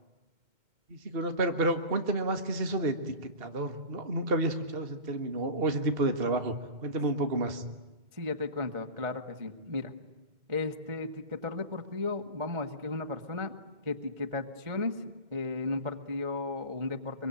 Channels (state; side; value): late; left; 2.1 ms